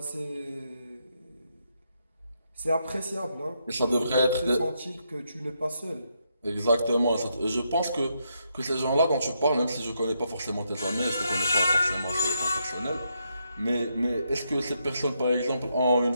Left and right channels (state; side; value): inverted; both; correlation -0.79